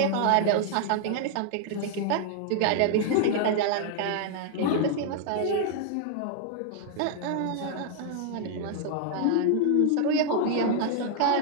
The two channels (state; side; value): different; both; correlation 0.00